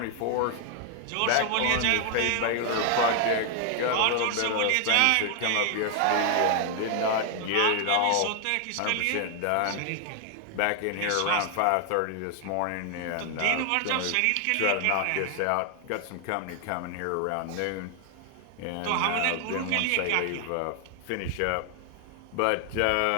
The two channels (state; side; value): different; both; correlation 0.00